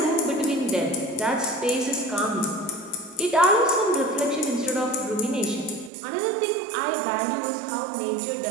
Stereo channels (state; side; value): drops out; left; at 5.9 s